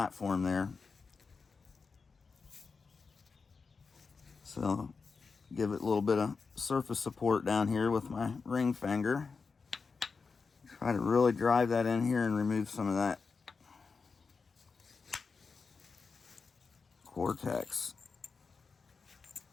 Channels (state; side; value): quieter; right; 4.9 dB